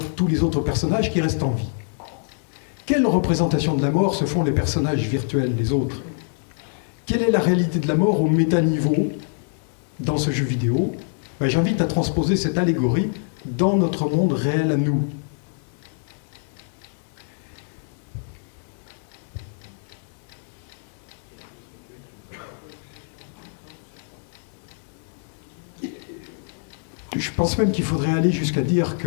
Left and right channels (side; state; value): right; silent; digital silence